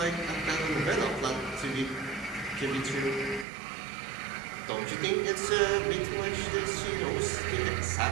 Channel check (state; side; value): drops out; left; at 3.5 s